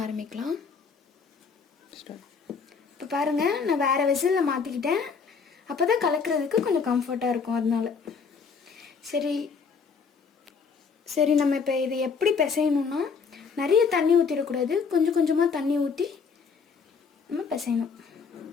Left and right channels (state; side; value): quieter; right; 5.5 dB